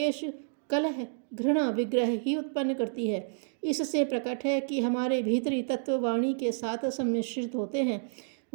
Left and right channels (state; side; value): silent; left; digital silence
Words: कलह, घृणा, विग्रह ही उत्पन्न करती है। इससे प्रकट है कि हमारे भीतरी तत्व वाणी के साथ सम्मिश्रित होते हैं।